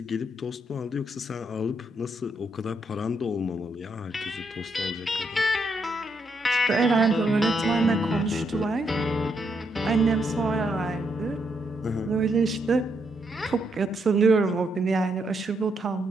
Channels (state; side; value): normal; both; correlation 0.77